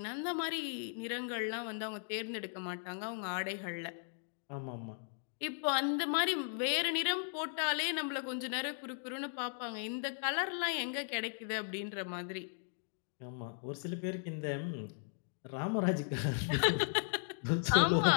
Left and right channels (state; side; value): silent; right; digital silence